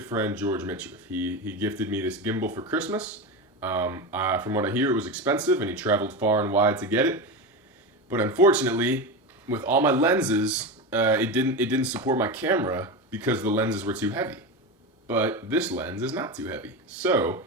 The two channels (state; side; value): normal; both; correlation 0.20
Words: friend George Mitchell. He gifted me this gimbal for Christmas. From what I hear, it was expensive, and he traveled far and wide to get it. But unfortunately, with all my lenses, it didn't support my camera because the lenses were too heavy. But this lens is not too heavy. So